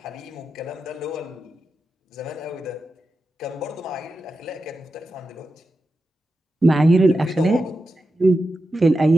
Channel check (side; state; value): both; normal; correlation 0.90